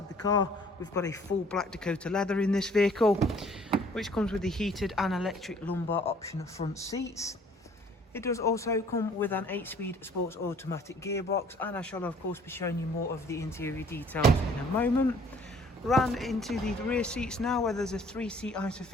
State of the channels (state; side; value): normal; both; correlation 0.56